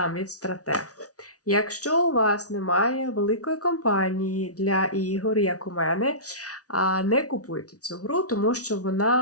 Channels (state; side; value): late; right; 0.67 ms